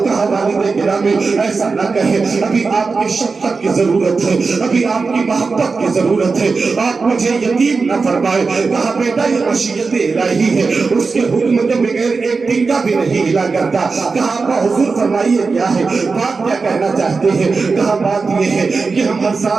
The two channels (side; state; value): left; quieter; 4.5 dB